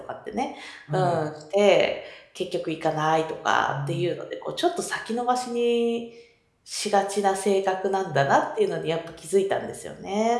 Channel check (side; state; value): both; identical; correlation 1.00